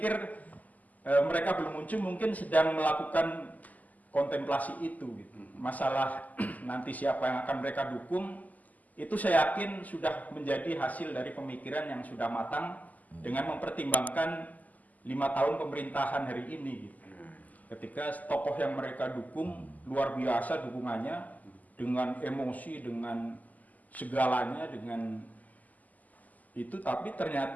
mereka belum muncul, mungkin sedang melakukan kontemplasi itu gitu. Masalah nanti siapa yang akan mereka dukung itu saya yakin sudah menjadi hasil dari pemikiran yang sudah matang dengan mempertimbangkan 5 tahun pemerintahan hari ini gitu. Ketika tokoh yang mereka dukung luar biasa dukungannya dengan emosi, dengan segalanya, dengan itu, tapi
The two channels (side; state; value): right; late; 0.079 ms